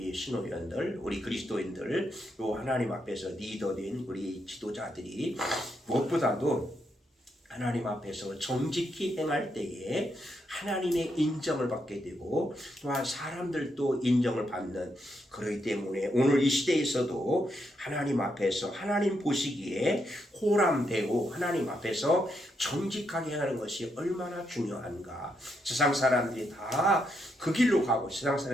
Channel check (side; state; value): both; normal; correlation 0.80